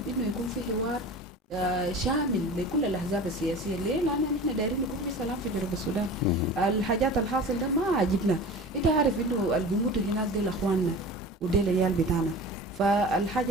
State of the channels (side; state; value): both; normal; correlation 0.36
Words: انه يكون في حوار شامل لكل الأحزاب السياسية. ليه؟ لأن إحنا دايرين يكون في سلام في جنوب السودان. الحاجات الحاصل ده ما عجبنا. أنت عارف إنه اللي بيموتوا هناك ديل أخواننا وديل العيال بتاعنا،